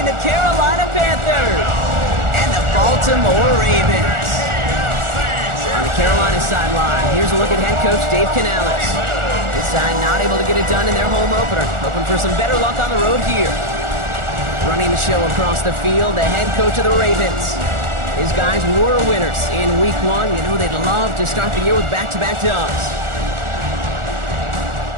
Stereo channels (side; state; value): left; late; 1.4 ms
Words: the Carolina Panthers and the Baltimore Ravens. On the Carolina sideline, here's a look at head coach Dave Canales. This side not able to get it done in their home opener, hoping for some better luck on the road here. Running the show across the field, the head coach of the Ravens. His guys were winners in week 1. You know they'd love to start the year with back-to-back dubs.